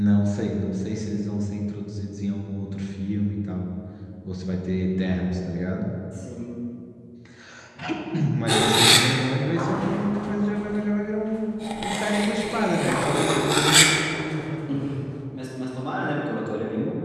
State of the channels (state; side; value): identical; both; correlation 1.00